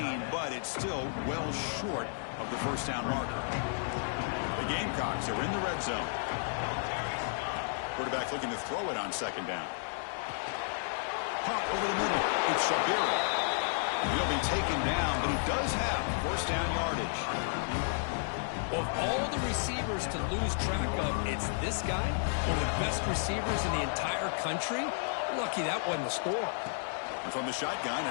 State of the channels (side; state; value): right; silent; digital silence